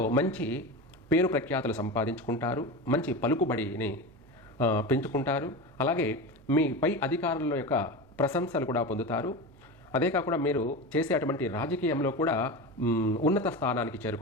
మంచి పేరు ప్రఖ్యాతులు సంపాదించుకుంటారు, మంచి పలుకుబడిని పెంచుకుంటారు. అలాగే మీ పై అధికారుల యొక్క ప్రశంసలు కూడా పొందుతారు. అదే కాకుండా మీరు చేసే అటువంటి రాజకీయంలో కూడా ఉన్నత స్థానానికి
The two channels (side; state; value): right; noise; hum, 26 dB below the sound